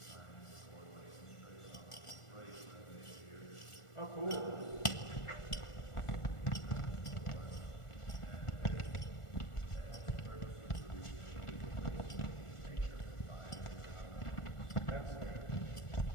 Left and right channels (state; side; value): late; right; 1.4 ms